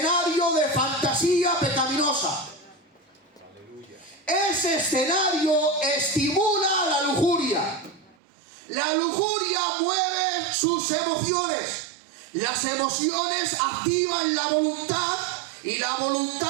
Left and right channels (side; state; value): left; drops out; at 8.2 s